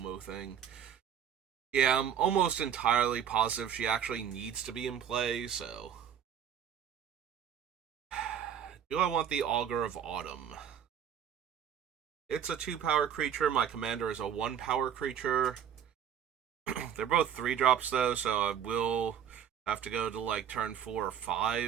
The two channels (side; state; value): left; quieter; 8.9 dB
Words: thing. Yeah, I'm almost entirely positive she actually needs to be in play, so... Do I want the Augur of Autumn? It's a 2-power creature. My commander is a 1-power creature. They're both 3-drops, though, so I will have to go to, like, turn 4 or